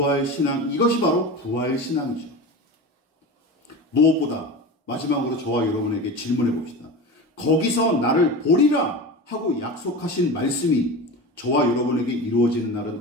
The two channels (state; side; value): normal; both; correlation 0.28